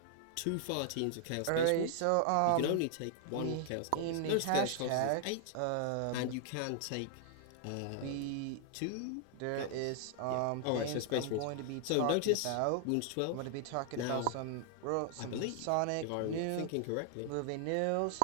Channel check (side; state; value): both; different; correlation 0.00